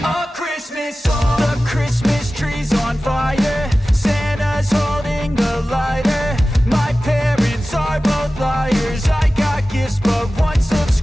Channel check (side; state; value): both; normal; correlation 0.96